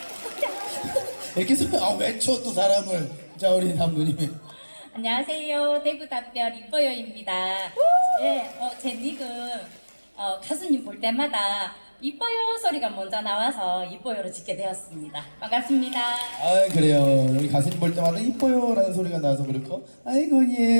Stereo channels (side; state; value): both; inverted; correlation -1.00